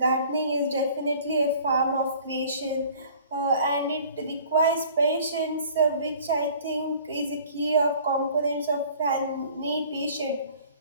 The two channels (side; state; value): both; inverted; correlation -0.50